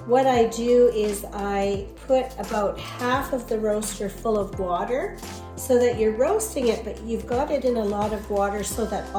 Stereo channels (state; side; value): identical; both; correlation 1.00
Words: what I do is I put about half of the roaster full of water so that you're roasting it, but you've got it in a lot of water so that